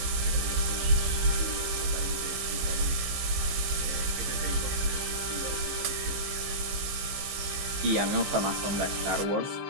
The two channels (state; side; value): late; left; 15 ms